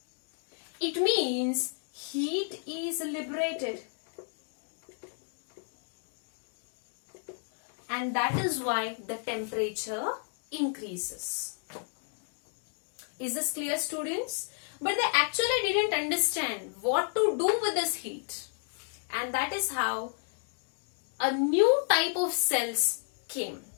It means heat is liberated. And that is why the temperature increases. Is this clear, students? But they actually didn't understand what to do with this heat. And that is how a new type of cells came.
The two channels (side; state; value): right; silent; 57 dB below the other